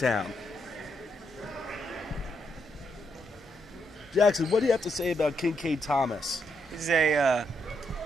Jackson, what do you have to say about Kincaid Thomas? He's a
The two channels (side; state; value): both; normal; correlation 0.79